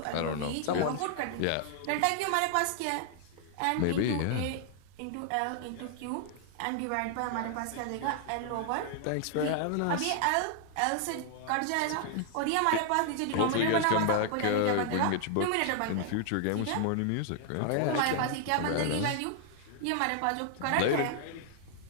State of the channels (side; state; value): both; different; correlation 0.00